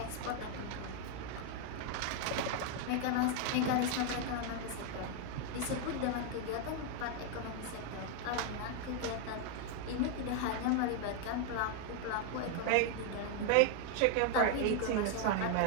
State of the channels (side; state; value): both; different; correlation 0.01